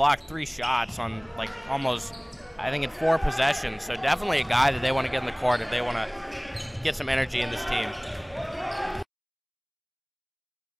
3 shots on almost, I think, in 4 possessions. So definitely a guy that they want to get in the court if they want to get some energy in this team.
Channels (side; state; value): both; identical; correlation 1.00